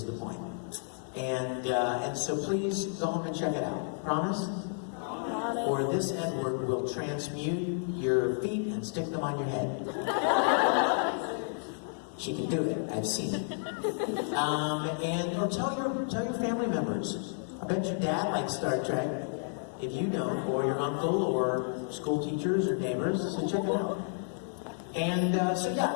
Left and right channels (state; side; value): silent; right; 57 dB below the other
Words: the point. And so please go home and check it out. Promise? Or this Edward will transmute your feet and stick them on your head. She can do it. I've seen it. Or tell your family members. I bet your dad likes Star Trek. If you don't, or your uncle, or school teachers, or neighbors, so check it out. And so yeah,